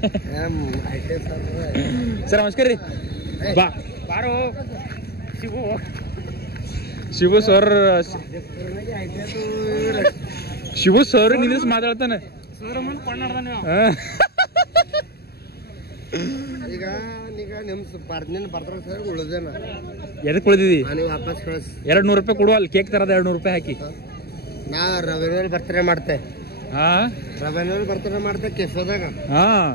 ಸರ್ ನಮಸ್ಕಾರ ರೀ ಬಾರೋ ಶಿವು ಸರ್ ನಿಂದ್ರಿಸಿ ಮಾತಾಡ್ತಾನೆ ಎದಕ್ ಉಳಿದಿದಿ $200 ಕೊಡುವ ಅಲ್ಲಿ ಕೇಕ್ ತರದ $200 ಹಾಕಿ ನಾ ರವಿನೂರ್ ಬರ್ತಡೇ ಮಾಡ್ತೆ ಹಾ ರವಿನೂರ್ ಬರ್ತಡೇ ಮಾಡ್ತೆ ಕೆಫೆದಾಗ ಹಾ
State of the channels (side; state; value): right; late; 0.46 ms